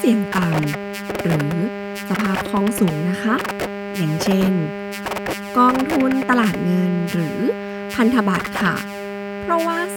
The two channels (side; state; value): both; identical; correlation 1.00